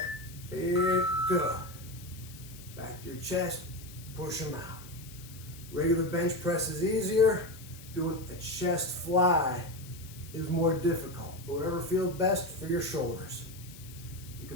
and go. Back to your chest, push them out. Regular bench press is easier. Doing a chest fly is more difficult, but whatever feels best for your shoulders. You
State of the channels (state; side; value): noise; left; hiss, 18 dB below the sound